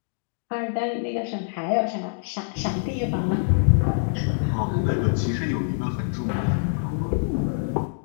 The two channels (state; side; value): silent; right; digital silence